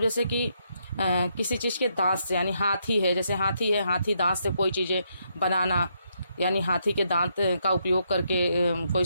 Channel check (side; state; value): both; inverted; correlation -0.77